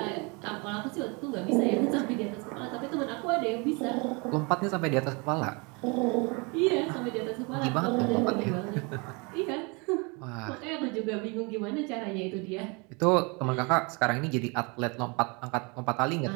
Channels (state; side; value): quieter; left; 30.0 dB